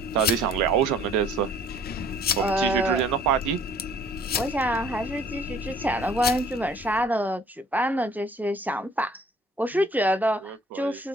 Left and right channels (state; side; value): normal; both; correlation 0.55